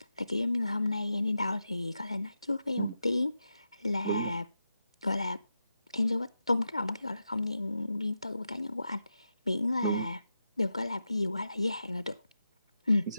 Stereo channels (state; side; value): inverted; both; correlation -0.89